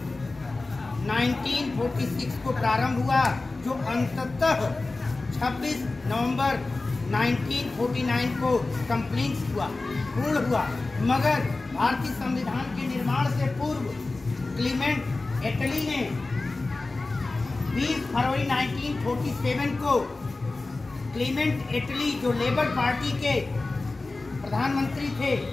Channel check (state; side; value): quieter; right; 3.3 dB